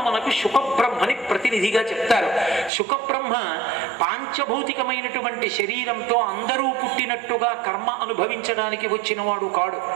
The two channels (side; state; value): left; drops out; at 2.7 s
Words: శుకబ్రహ్మని ప్రతినిధిగా చెప్తారు. శుకబ్రహ్మ పాంచభౌతికమైనటువంటి శరీరంతో అందరూ పుట్టినట్టుగా కర్మ అనుభవించడానికి వచ్చినవాడు కాడు.